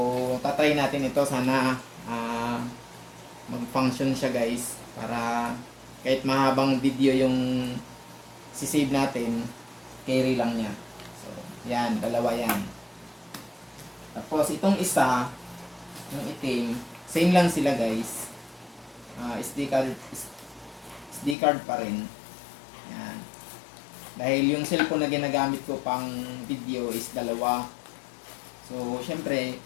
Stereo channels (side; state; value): right; drops out; at 21.4 s